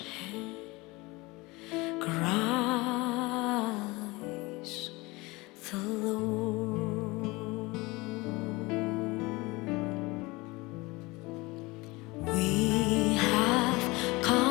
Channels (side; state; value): right; quieter; 23.3 dB